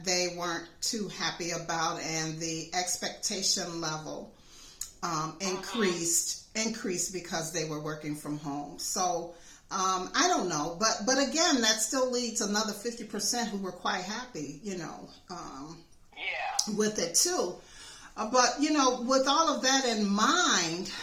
they weren't too happy about, and the expectation level increased because they were working from home. So I don't know, but again, that still leads another 50% who were quite happy, with it too. But with all of that in mind,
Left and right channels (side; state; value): both; identical; correlation 1.00